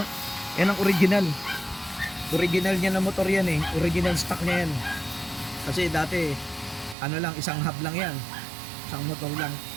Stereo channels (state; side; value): drops out; left; at 7.0 s